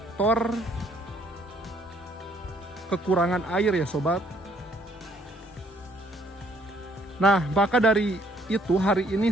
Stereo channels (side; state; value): both; normal; correlation 0.64